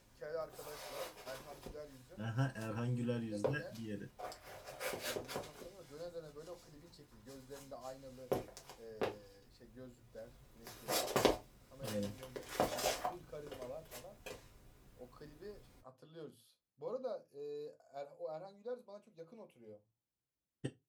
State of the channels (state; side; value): identical; both; correlation 1.00